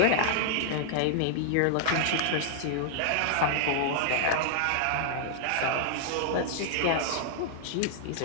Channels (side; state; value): both; different; correlation -0.01